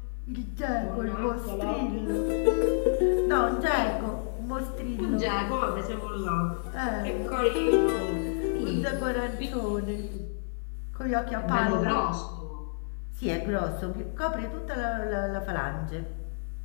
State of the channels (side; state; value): right; silent; digital silence